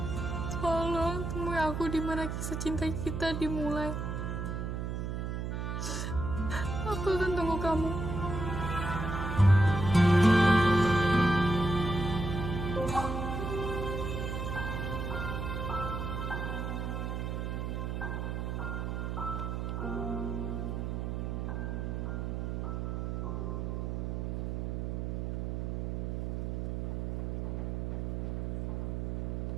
tolong temui aku di mana kisah cinta kita dimulai. Aku akan tunggu kamu.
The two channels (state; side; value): noise; right; hum, 2 dB below the sound